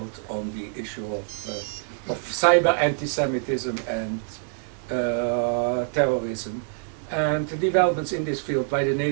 on the issue of cyber anti-Semitism and terrorism, and the developments in this field by the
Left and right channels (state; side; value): silent; left; digital silence